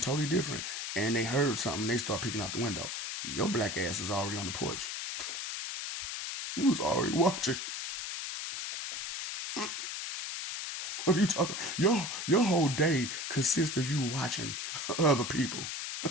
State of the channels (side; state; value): left; noise; hiss, 5 dB below the sound